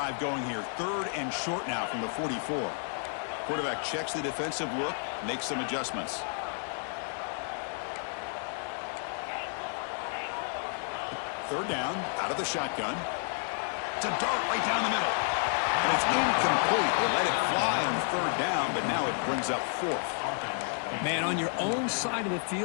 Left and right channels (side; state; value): right; silent; 57 dB below the other